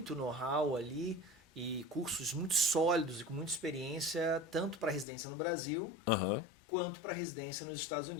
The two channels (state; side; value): drops out; right; at 5.1 s